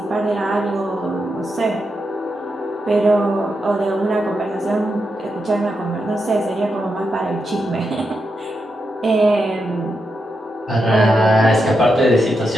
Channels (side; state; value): both; normal; correlation 0.85